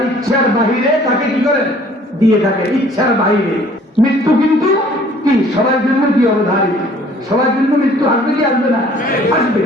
ইচ্ছার বাহিরে তাকে কি করেন, দিয়ে থাকে, ইচ্ছার বাহিরে। মৃত্যু কিন্তু কি সবার জন্য কি অবধারিত, সবার জন্য মৃত্যু আসবে কি আসবে না, আসবে।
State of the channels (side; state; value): both; normal; correlation 0.55